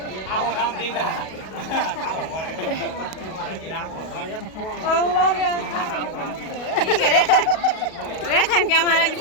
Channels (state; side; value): late; right; 37 ms